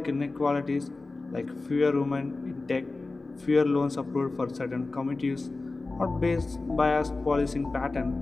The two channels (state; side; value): quieter; right; 3.4 dB